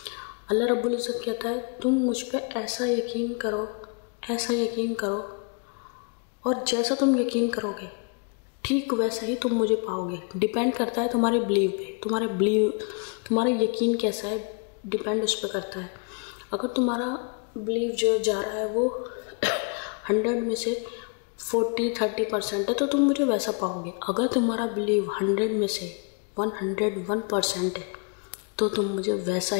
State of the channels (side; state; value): right; quieter; 37.9 dB